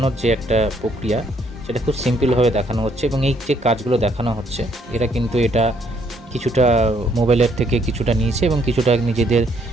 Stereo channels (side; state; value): both; normal; correlation 0.68